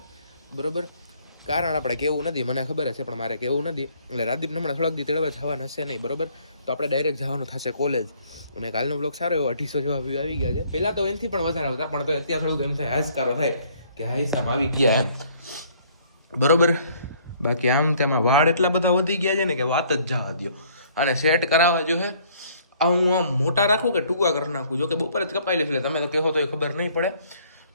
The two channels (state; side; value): inverted; both; correlation -0.61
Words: બરોબર. કારણ આપણે કેવું નથી, મને ખબર છે પણ મારે કેવું નથી. એટલે રાદીપને હમણાં થોડાક દી તેડવા જવાના હશે નહીં બરોબર. તો આપણે ડાયરેક્ટ જવાનું થશે કોલેજ. અને કાલનો બ્લોગ સારો એવો 250 જેવા વ્યૂ આવી ગયા છે. પહેલાં તો એનાથી પણ વધારે આવતા પણ તો અત્યારે થોડુંક એમ થાય હાશકારો થાય કે હાઈસામ આવી ગયા એમ બરોબર. બાકી આમ તેમાં વાળ એટલા બધા વધી ગયા છે ને કે વાત જ જવા દો. અને સેટ કરાવવા જો હે આ હું આમ મોટા રાખું કે ટૂંકા કરી નાખું. જો કે બપોર જ કપાઈ લઈશ એટલે તમે તો કહો તો એ ખબર નહીં પડે.